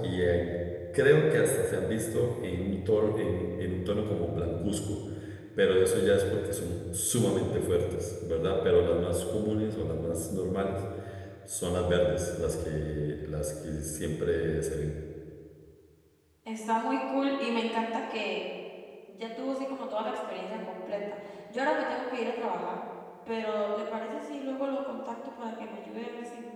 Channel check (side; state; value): both; identical; correlation 1.00